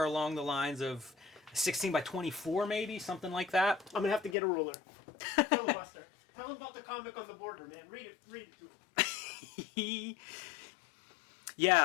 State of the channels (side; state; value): right; drops out; at 4.4 s